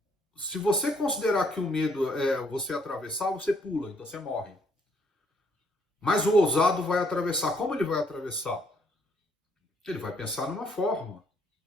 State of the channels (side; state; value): both; normal; correlation 0.68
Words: se você considerar que o medo é você atravessar, você pula, então você morre. Mas o ousado vai atravessar. Como ele vai atravessar? Ele vai pensar numa forma.